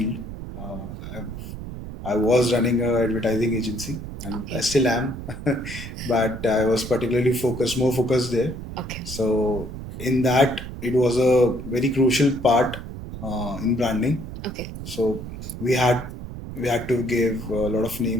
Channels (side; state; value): right; noise; rumble, 10 dB below the sound